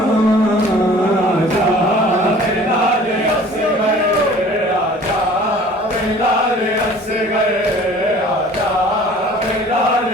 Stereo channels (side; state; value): both; normal; correlation 0.48